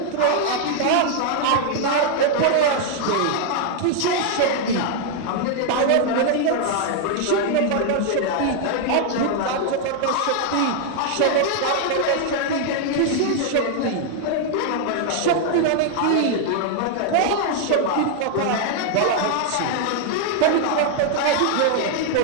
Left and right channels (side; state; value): both; different; correlation 0.00